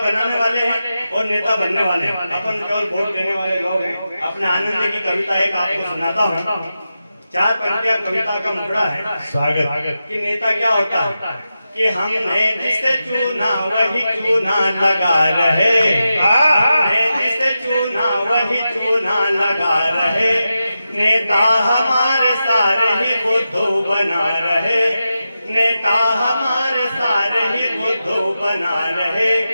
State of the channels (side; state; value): both; inverted; correlation -0.91